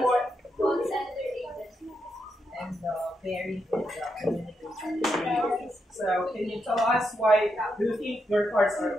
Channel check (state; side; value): normal; both; correlation 0.83